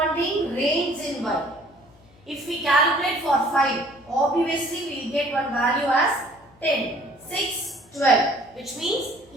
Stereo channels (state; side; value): noise; left; hum, 29 dB below the sound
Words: range in y. If we calculate for 5, obviously we will get one value as 10, 6, 12. Which means